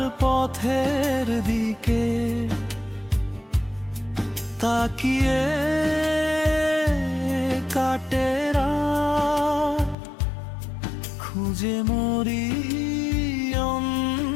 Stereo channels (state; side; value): drops out; right; at 10.0 s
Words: পথের দিকে তাকিয়ে কাটে রাত, খুঁজে মরি